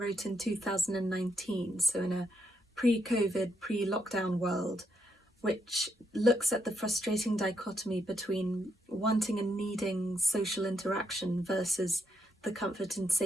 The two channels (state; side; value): normal; both; correlation 0.79